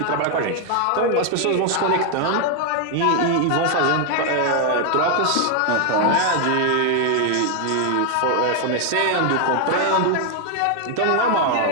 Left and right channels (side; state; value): both; different; correlation 0.00